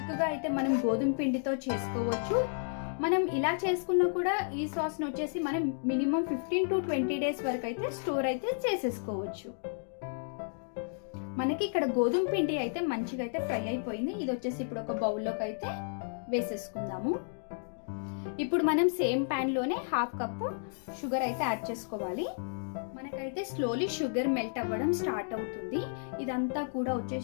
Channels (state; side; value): silent; right; digital silence